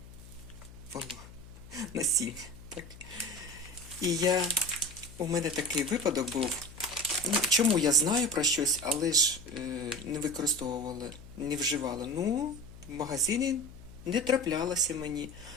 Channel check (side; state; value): left; noise; hum, 18 dB below the sound